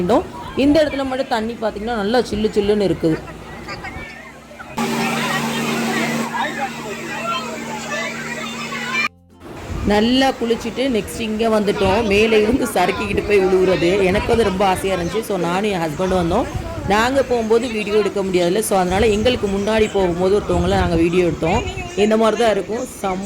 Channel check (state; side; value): identical; both; correlation 1.00